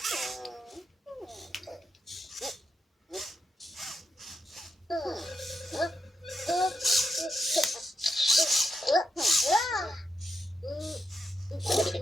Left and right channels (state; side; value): normal; both; correlation 0.84